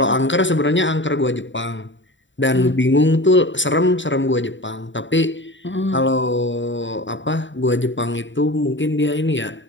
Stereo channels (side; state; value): right; late; 0.54 ms